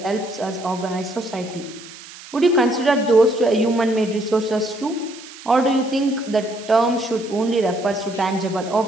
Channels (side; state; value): right; noise; hiss, 17 dB below the sound